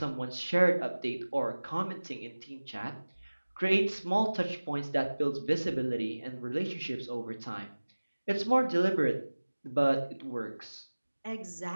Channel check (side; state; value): both; inverted; correlation -1.00